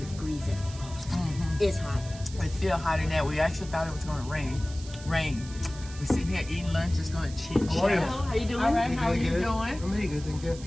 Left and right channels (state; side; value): noise; right; hiss, 17 dB below the sound